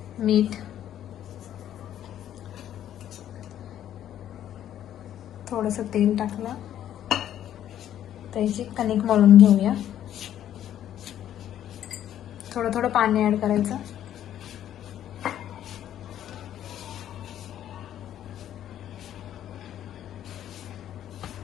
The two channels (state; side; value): quieter; right; 11.1 dB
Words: मीठ, थोडंसं तेल टाकलं. त्याची कणिक मळून घेऊया. थोडं थोडं पाणी ऍड करायचं.